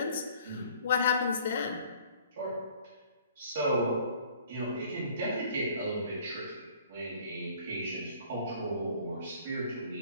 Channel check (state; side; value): inverted; both; correlation -0.54